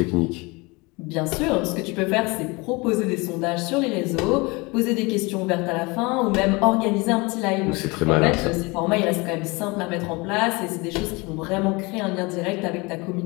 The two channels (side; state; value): right; quieter; 25.8 dB